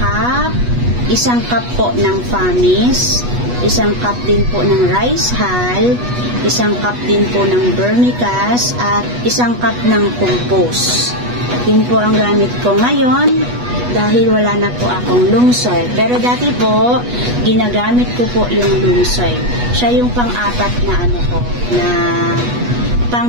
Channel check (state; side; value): late; left; 8.2 ms